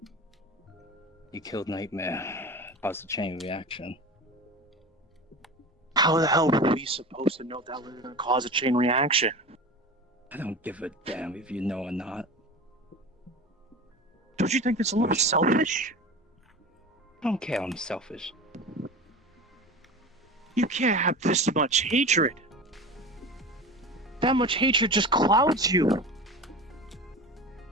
You killed Nightmare. Caused a chain reaction. How the hell were we supposed to know that was going to cause a chain reaction? I don't give a damn if you know or not. Don't you think it's a little selfish? I don't care I'm selfish. You can't have this much hatred. That much hatred just clouds you.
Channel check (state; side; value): normal; both; correlation 0.32